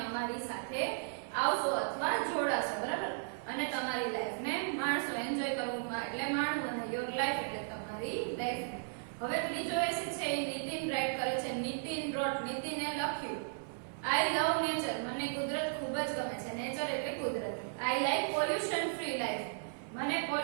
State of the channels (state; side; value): silent; left; 54 dB below the other